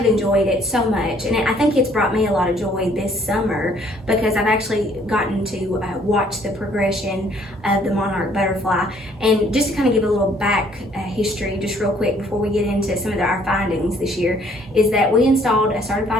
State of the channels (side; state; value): both; normal; correlation 0.62